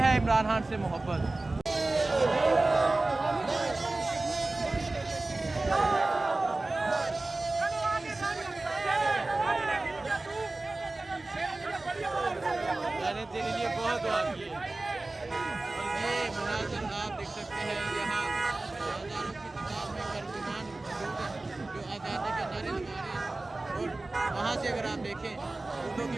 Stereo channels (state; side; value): quieter; left; 3.0 dB